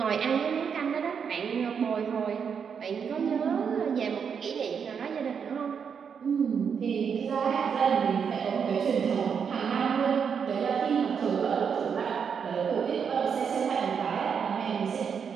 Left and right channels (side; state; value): left; quieter; 6.8 dB